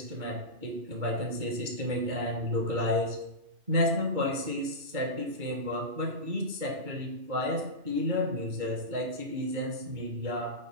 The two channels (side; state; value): left; late; 2.2 ms